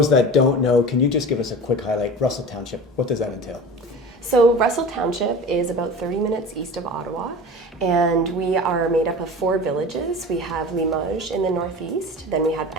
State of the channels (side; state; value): both; normal; correlation 0.34